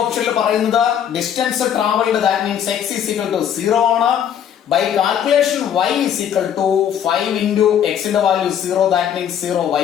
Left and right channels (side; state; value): right; quieter; 9.2 dB